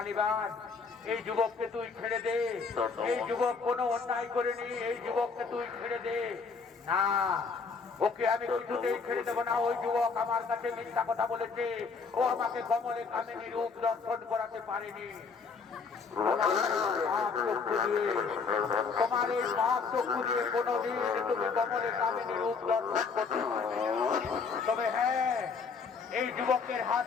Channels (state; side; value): quieter; right; 5.1 dB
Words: এই যুবককে তুই ছেড়ে দে। এই যুবক কোনো অন্যায় করেনি, এই যুবককে তুই ছেড়ে দে। না, ওকে আমি কিছুতেই ছেড়ে দেবো না। ওই যুবক আমার কাছে মিথ্যা কথা বলেছে, ও আমাকে কমলে কামিনী রূপ দর্শন করাতে পারেনি। তোমার এই পাপ চক্ষু দিয়ে কোনোদিন তুমি কমলে কামিনী রূপ দর্শন করতে পারবে। তবে হ্যাঁ, এই যুবকের হাত